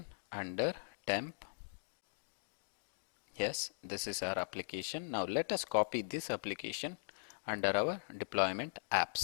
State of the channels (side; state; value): right; silent; digital silence